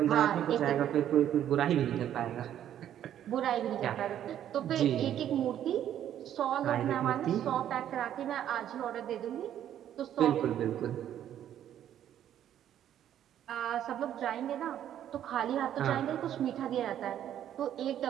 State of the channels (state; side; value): quieter; left; 10.7 dB